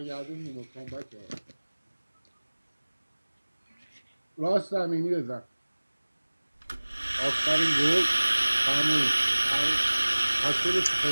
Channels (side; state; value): both; inverted; correlation -1.00